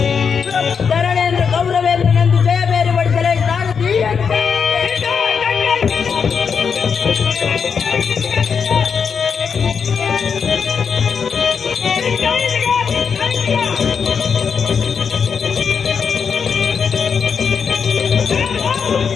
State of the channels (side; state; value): right; quieter; 6.3 dB